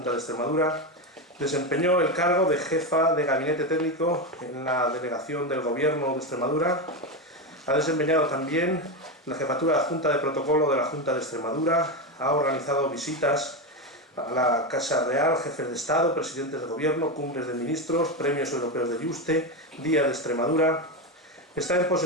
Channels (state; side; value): normal; both; correlation 0.13